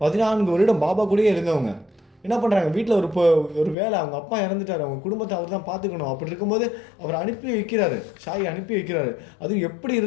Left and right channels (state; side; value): drops out; right; at 3.8 s